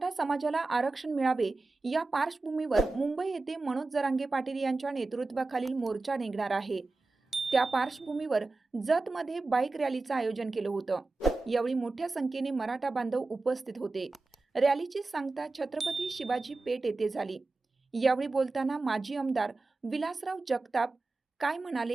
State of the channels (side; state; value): left; quieter; 3.4 dB